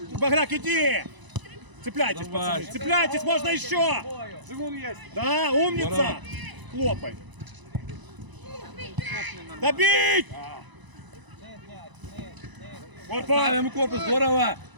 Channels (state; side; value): late; left; 1.0 ms